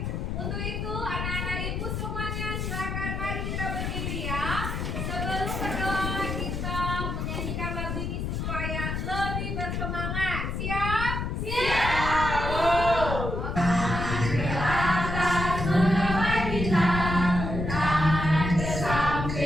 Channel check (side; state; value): left; noise; rumble, 3 dB below the sound